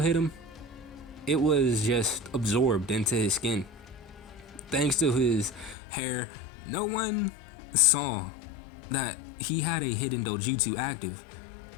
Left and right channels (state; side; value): drops out; right; at 5.8 s